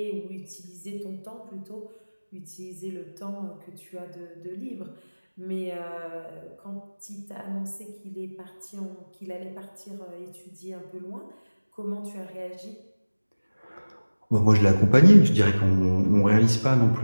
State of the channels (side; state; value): both; inverted; correlation -1.00